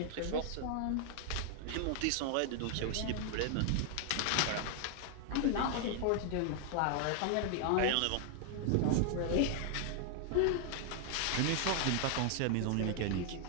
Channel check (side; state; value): both; different; correlation 0.00